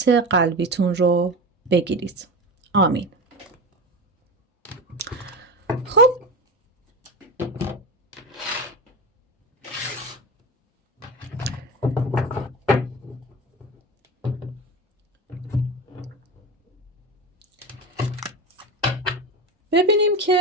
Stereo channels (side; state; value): both; normal; correlation 0.25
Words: قلبیتون رو بگیرید. آمین. خب ببینیم